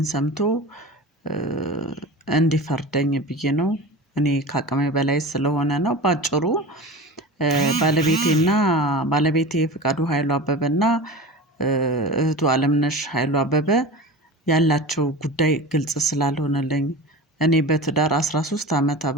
ሰምቶ እንዲፈርደኝ ብዬ ነው። እኔ ከአቅሜ በላይ ስለሆነ ነው። በአጭሩ ባለቤቴ ፍቃዱ ኃይሉ አበበና እህቱ አለምነሽ ኃይሉ አበበ ያላቸው ጉዳይ ግልጽ ስላልሆነልኝ እኔ በትዳር 13 አመት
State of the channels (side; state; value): both; normal; correlation 0.32